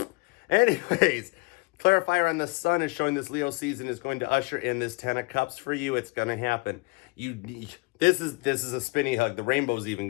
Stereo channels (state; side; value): quieter; right; 25.4 dB